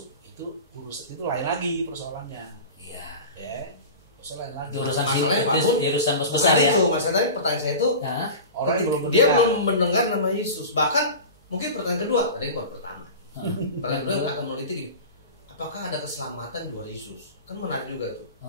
itu urusan itu lain lagi persoalannya. Iya. Persoalan lain lagi. Urusan Masalahnya Pak Bun, urusan bukan besar ya. itu. Masalahnya pertanyaan saya itu Orang yang dia belum mendengar nama Yesus. Bahkan mungkin pertanyaan kedua, ada yang pertama. Pertanyaan kedua akan meneliti gini, apakah ada keselamatan di luar Yesus? Kan menarik juga tuh.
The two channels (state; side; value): inverted; both; correlation -0.32